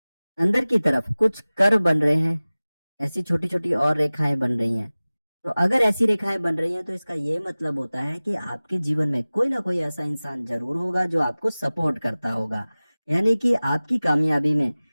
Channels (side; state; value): both; inverted; correlation -0.99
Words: अंदर की तरफ कुछ कर्व बन रहे हैं, ऐसी छोटी छोटी और रेखाएं बन रही हैं, तो अगर ऐसी रेखाएं बन रही हैं तो इसका ये मतलब होता है कि आपके जीवन में कोई ना कोई ऐसा इंसान जरूर होगा जो आपको सपोर्ट करता होगा, यानी कि आपकी कामयाबी में